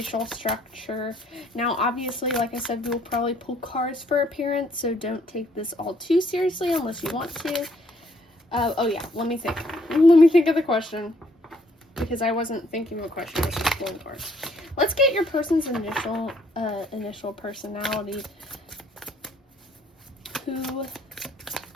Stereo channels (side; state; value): both; normal; correlation 0.66